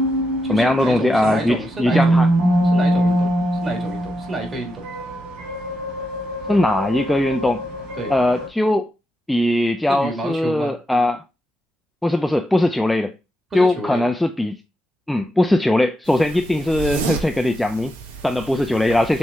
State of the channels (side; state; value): both; normal; correlation 0.86